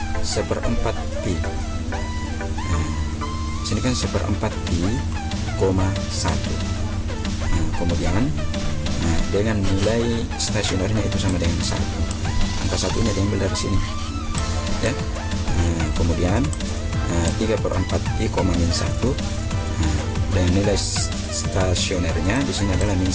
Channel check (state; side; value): identical; both; correlation 1.00